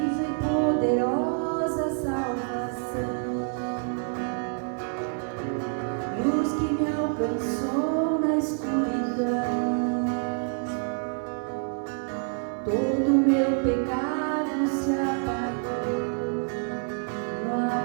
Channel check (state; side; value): silent; left; 55 dB below the other